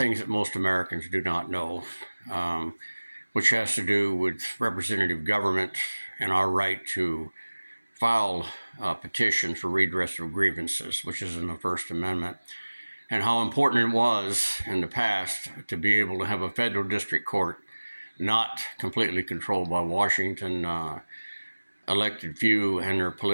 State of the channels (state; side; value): inverted; both; correlation -1.00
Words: that most Americans do not know, which has to do with representative government and our right to file petitions for redress of grievances, which is in the First Amendment, and how important it was in the past to be able to have a federal district court not completely controlled by Washington elected few and their